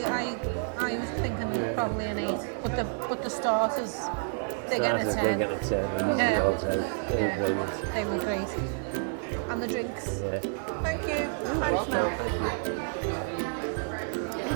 I was thinking probably an 8. But the starters, they're getting a 10. They're getting a 10. Yeah. All 10. They were brilliant. They were great. And the drinks. Yeah. Thank you. Thanks, Mel. Thank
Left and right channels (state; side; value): silent; left; digital silence